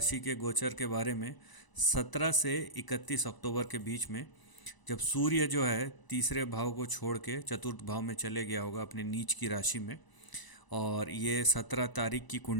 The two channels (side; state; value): right; late; 1.0 ms